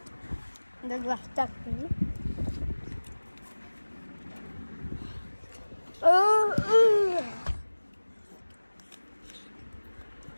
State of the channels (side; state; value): both; inverted; correlation -1.00